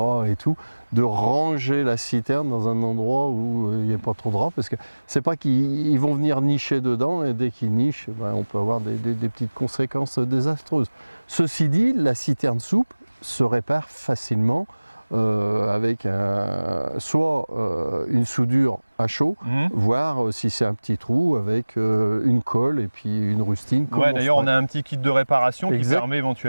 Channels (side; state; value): both; inverted; correlation -1.00